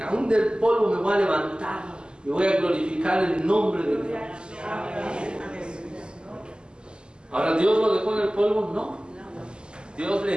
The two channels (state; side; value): late; left; 0.048 ms